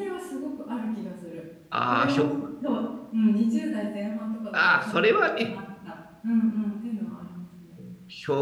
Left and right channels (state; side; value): identical; both; correlation 1.00